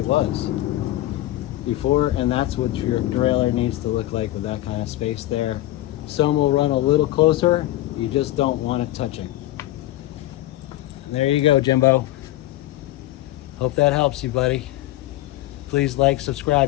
was before. And that's what your derailleur needs to look like, with that kind of space there. Some will run a little closer. You just don't want it touching. There you go, Jimbo. Hope that helps you, buddy. Please like,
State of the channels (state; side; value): quieter; right; 15.7 dB